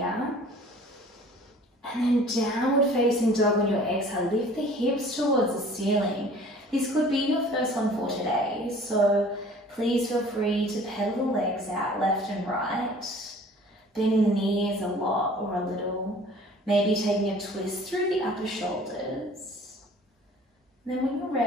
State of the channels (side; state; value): both; normal; correlation 0.49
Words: And then downward facing dog on your exhale. Lift the hips towards the ceiling. This could be your first one for today, so please feel free to pedal the legs out left and right. Bending the knees a lot or a little. Maybe taking a twist through the upper shoulders. And then when you're